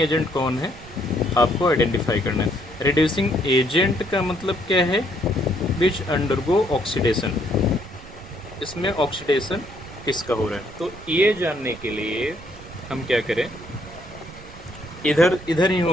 agent कौन है आपको आइडेंटिफाई करना है। रिड्यूसिंग एजेंट का मतलब क्या है, विच अंडरगो ऑक्सीडेशन। इसमें ऑक्सीडेशन किसका हो रहा है, तो ये जानने के लिए हम क्या करें, इधर ही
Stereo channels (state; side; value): noise; right; rumble, 18 dB below the sound